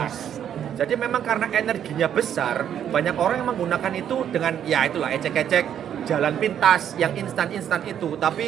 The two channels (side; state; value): left; quieter; 9.5 dB